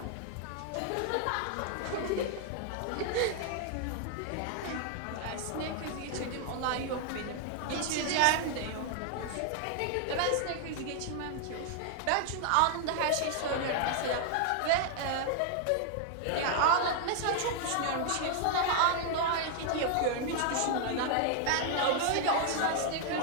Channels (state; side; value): different; both; correlation 0.00